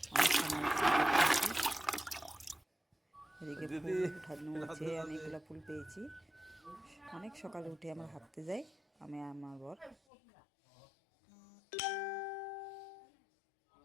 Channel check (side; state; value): right; drops out; at 10.0 s